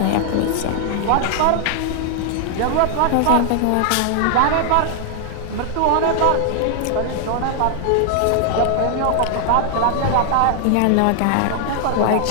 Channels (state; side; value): different; both; correlation 0.00